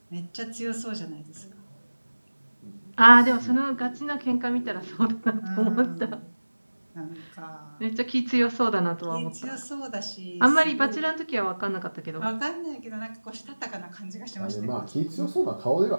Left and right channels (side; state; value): both; inverted; correlation -1.00